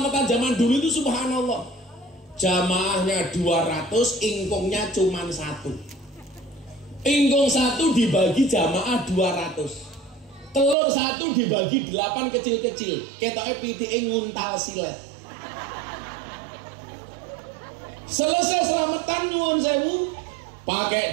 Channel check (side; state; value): left; drops out; at 10.8 s